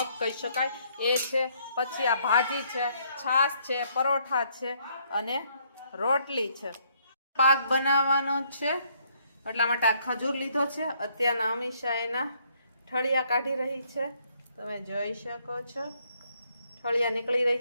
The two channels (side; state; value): both; inverted; correlation -0.69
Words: કહી શકાય એ છે. પછી આ ભાજી છે, છાશ છે, પરોઠા છે અને રોટલી છે. પાક બનાવવાનો છે એટલા માટે આ ખજૂર લીધો છે. અત્યારના અમીષા એના ઠળિયા કાઢી રહી છે, તમે જોઈ શકો છો. ઠળિયા નીકળી